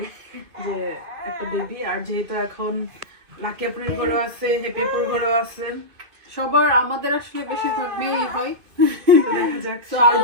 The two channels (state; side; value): late; left; 2.6 ms